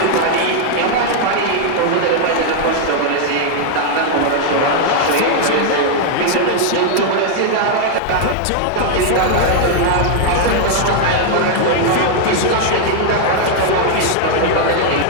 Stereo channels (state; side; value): different; both; correlation 0.00